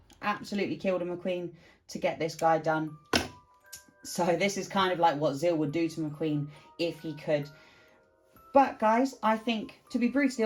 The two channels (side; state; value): both; identical; correlation 1.00